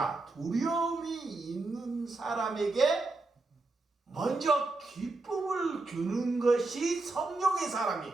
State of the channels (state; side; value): quieter; left; 3.3 dB